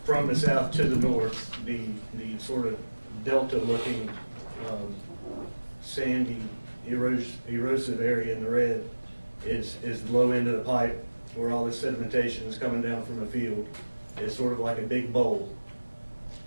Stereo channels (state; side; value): inverted; both; correlation -1.00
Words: from the south to the north. The sort of delta-looking sandy, erosive area in the red is the low end of the pipe where all this sedimentation is coming down from the field. is sort of like a big bowl.